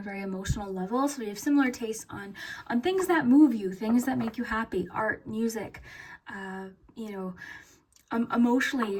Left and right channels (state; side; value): identical; both; correlation 1.00